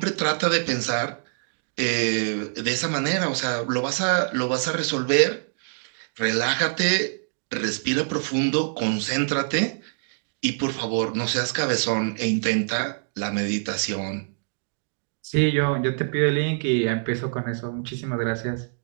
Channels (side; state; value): left; silent; digital silence